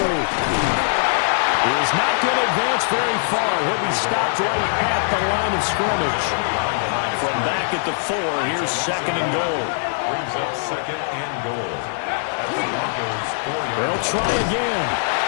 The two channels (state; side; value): silent; right; 65 dB below the other